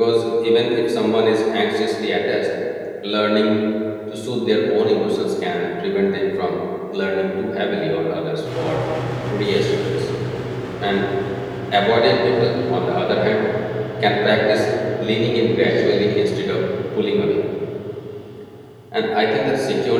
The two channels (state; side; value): identical; both; correlation 1.00